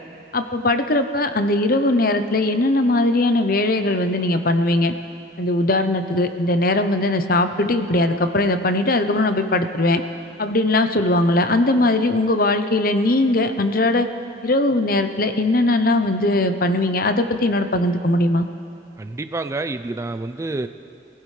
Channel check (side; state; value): both; normal; correlation 0.41